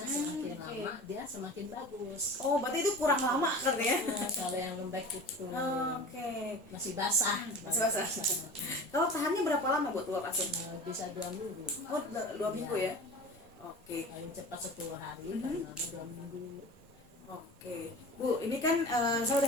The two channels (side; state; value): both; normal; correlation 0.36